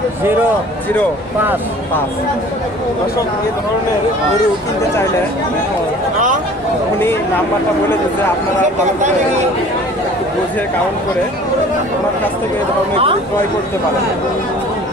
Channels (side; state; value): both; normal; correlation 0.48